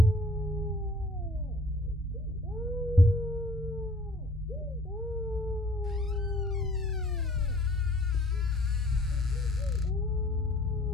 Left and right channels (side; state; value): both; normal; correlation 0.54